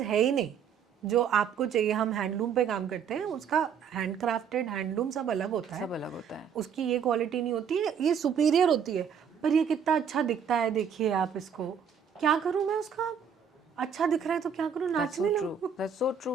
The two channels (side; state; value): left; quieter; 7.2 dB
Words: है ही नहीं जो आपको चाहिए। हम हैंडलूम पे काम करते हैं, उसका हैंड क्राफ्टेड हैंडलूम सब अलग होता है, सब अलग होता है। उसकी ये क्वालिटी नहीं होती है, ये सुपीरियर होती है, पर ये कितना अच्छा दिखता है, देखिए आप इसको। क्या करूँ मैं उसका, अच्छा दिख रहा है तो क्या करूँ, नाचने लगूं? That's so